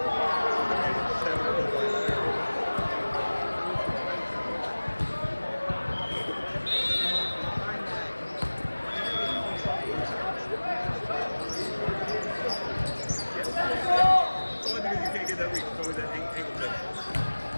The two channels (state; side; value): inverted; both; correlation -1.00